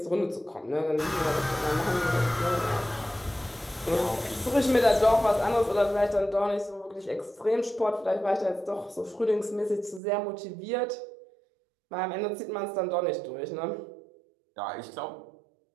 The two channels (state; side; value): drops out; left; at 10.0 s